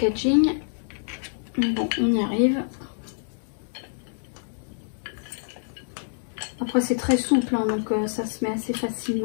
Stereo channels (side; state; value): right; silent; 61 dB below the other